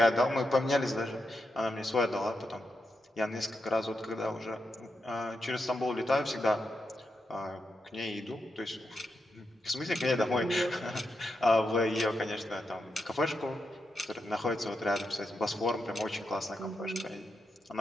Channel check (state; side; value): normal; both; correlation 0.85